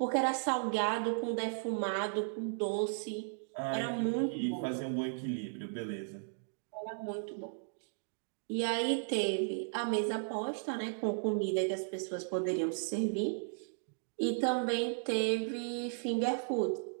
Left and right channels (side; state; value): left; silent; digital silence